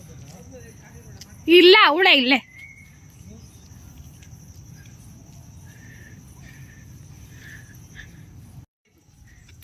ಇಲ್ಲ ಅವಳ ಇಲ್ಲೇ.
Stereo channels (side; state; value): both; identical; correlation 1.00